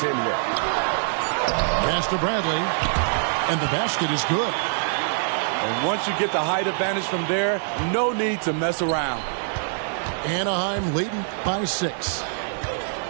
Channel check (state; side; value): silent; left; digital silence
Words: with. Pass to Bradley. And the basket is good. And once you get the height advantage from there, no need to mess around. Anaheim leading by 6.